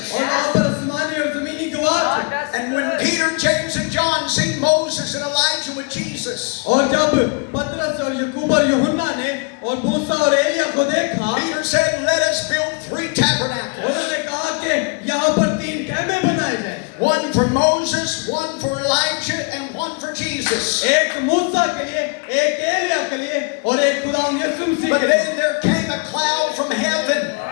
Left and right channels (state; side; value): quieter; right; 34.7 dB